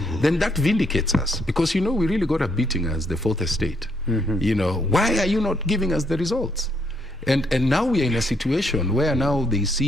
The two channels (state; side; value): normal; both; correlation 0.73